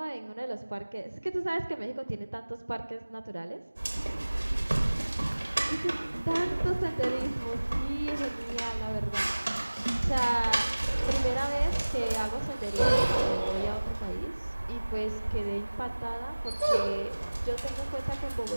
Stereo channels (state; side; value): inverted; both; correlation -1.00